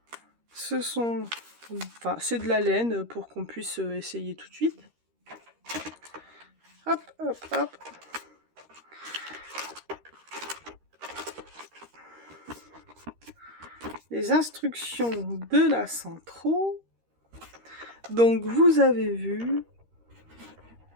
Ce sont... Enfin, c'est de la laine pour qu'on puisse essayer tout de suite. Hop, hop, hop. Les instructions de la Centro. Donc, vous avez vu...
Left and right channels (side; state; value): left; late; 13 ms